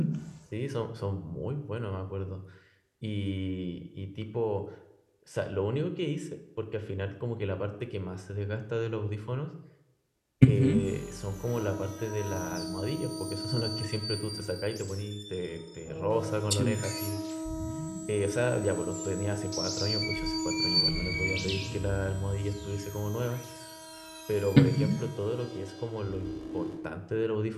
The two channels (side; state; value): both; identical; correlation 1.00